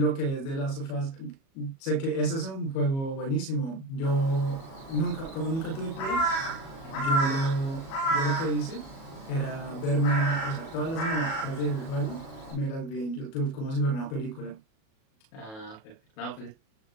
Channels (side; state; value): right; late; 37 ms